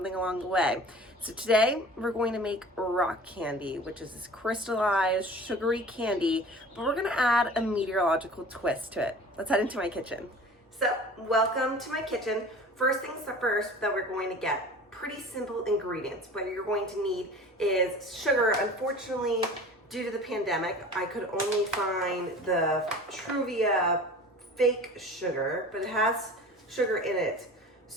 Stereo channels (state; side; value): normal; both; correlation 0.41